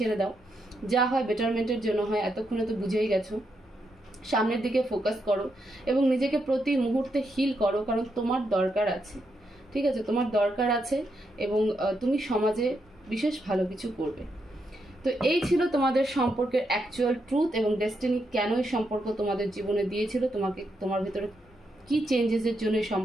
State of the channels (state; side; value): normal; both; correlation 0.81